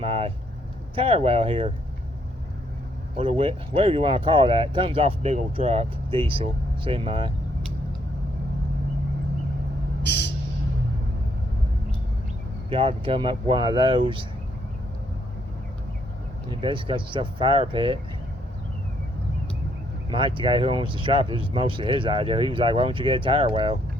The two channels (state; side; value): normal; both; correlation 0.72